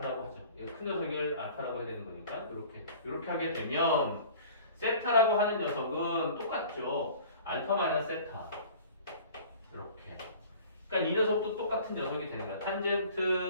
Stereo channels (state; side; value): inverted; both; correlation -0.45